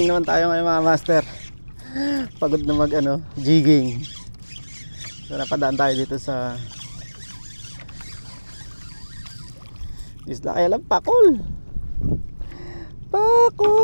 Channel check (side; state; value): both; inverted; correlation -1.00